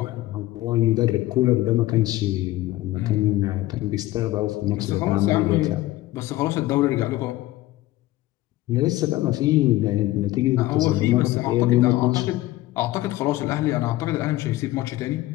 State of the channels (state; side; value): quieter; right; 16.8 dB